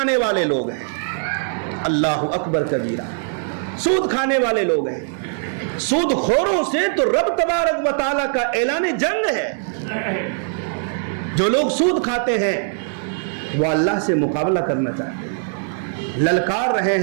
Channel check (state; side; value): silent; left; 59 dB below the other